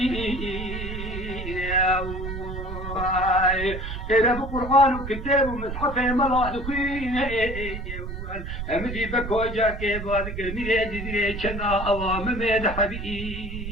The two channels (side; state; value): right; noise; rumble, 7 dB below the sound